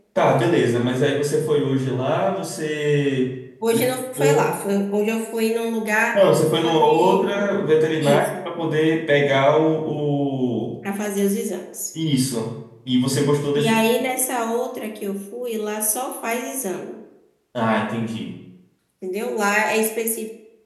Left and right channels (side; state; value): both; identical; correlation 1.00